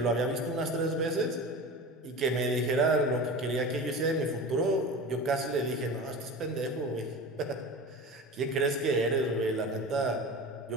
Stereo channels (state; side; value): normal; both; correlation 0.32